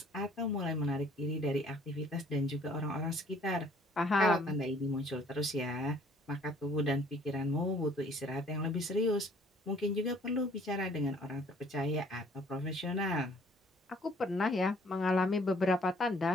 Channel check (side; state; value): both; normal; correlation 0.58